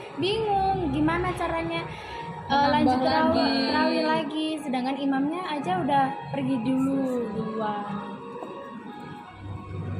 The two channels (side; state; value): both; identical; correlation 1.00